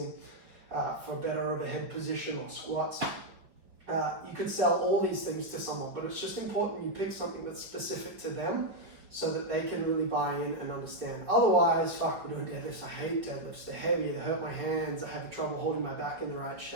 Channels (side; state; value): left; late; 5.5 ms